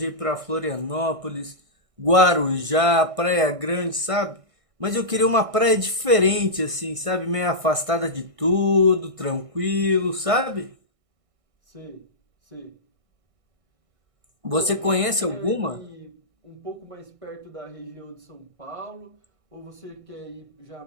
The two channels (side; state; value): left; late; 1.6 ms